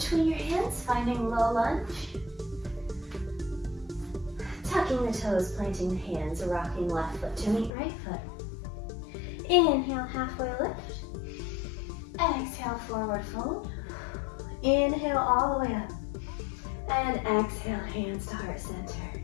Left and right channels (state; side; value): drops out; right; at 7.7 s